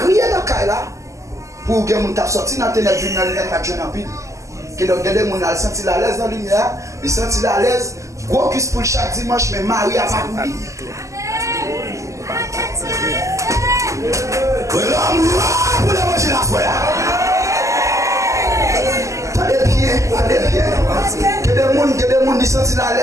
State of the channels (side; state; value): left; late; 0.15 ms